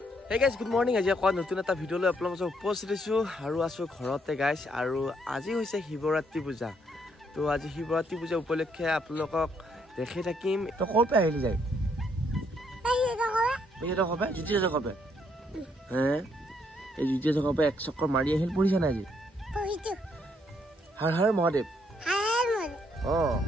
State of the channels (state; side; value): normal; both; correlation 0.72